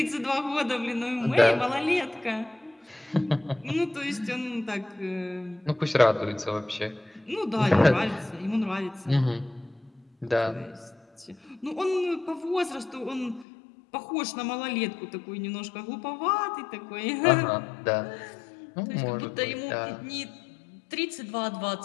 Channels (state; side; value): drops out; right; at 13.5 s